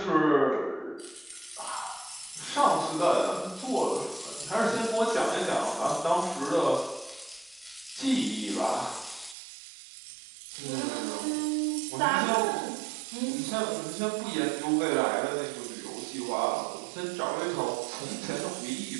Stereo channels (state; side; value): drops out; left; at 9.3 s